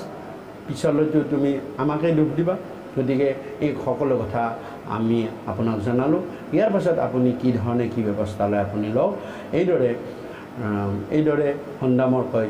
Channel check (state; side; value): identical; both; correlation 1.00